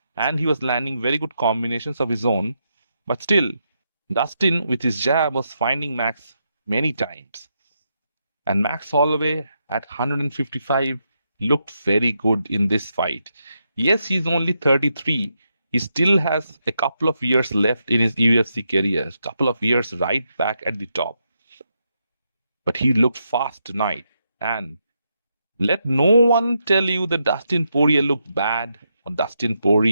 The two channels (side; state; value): both; inverted; correlation -0.82